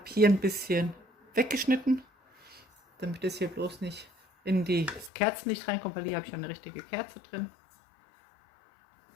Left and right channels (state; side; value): drops out; right; at 5.1 s